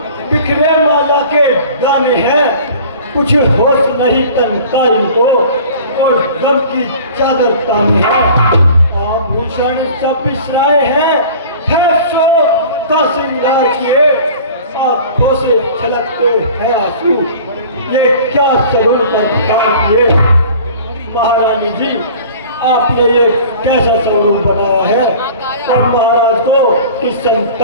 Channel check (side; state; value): both; inverted; correlation -0.44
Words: बिखरे माला के दाने हैं, कुछ होश नहीं तन का इनको और गम की चादर ताने हैं। आभूषण सब बिसराए हैं, है सो का श्रृंगार किए, आंखों से छलकते हैं आंसू, ये क्या सरूर पर तार किए। महारानी जी, आपने ये कैसा स्वरूप बनाया है और महाराज को इस